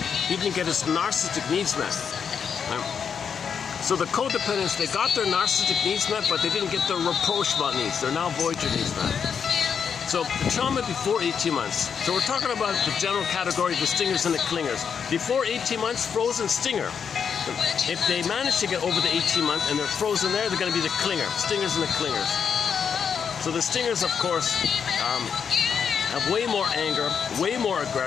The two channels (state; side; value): quieter; right; 6.9 dB